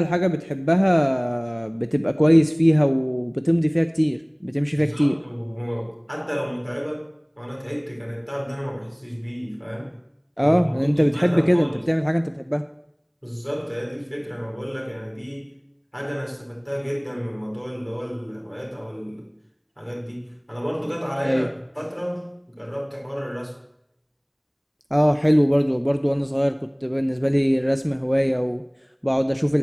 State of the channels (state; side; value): identical; both; correlation 1.00